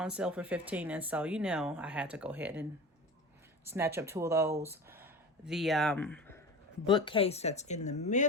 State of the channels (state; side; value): normal; both; correlation 0.31